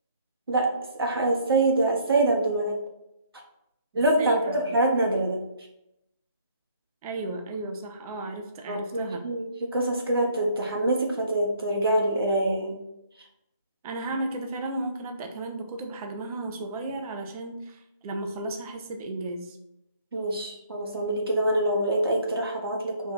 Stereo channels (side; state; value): both; inverted; correlation -0.59